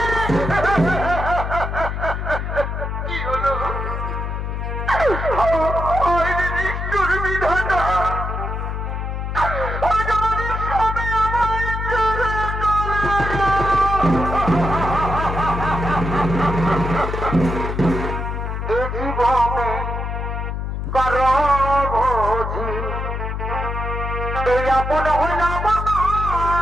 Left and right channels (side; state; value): left; noise; hum, 3 dB below the sound